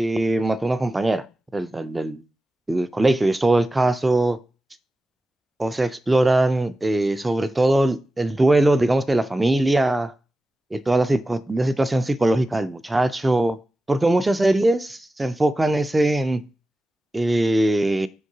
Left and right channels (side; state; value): both; normal; correlation 0.94